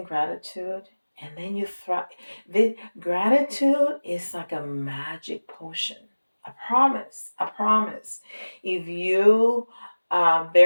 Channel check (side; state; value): both; inverted; correlation -1.00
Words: gratitude and then you thrive. The gratitude is like a magic potion. I promise. I promise. If you